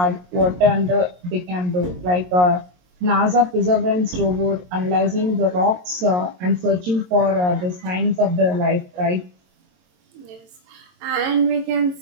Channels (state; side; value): late; left; 22 ms